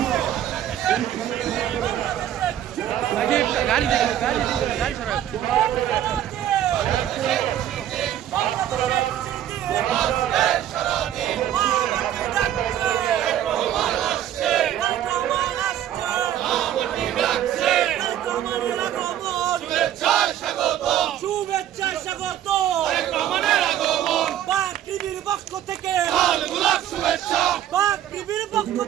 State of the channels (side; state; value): left; quieter; 11.4 dB